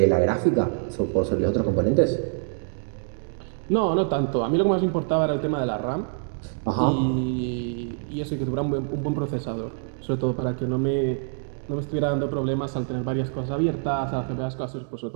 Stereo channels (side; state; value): left; silent; digital silence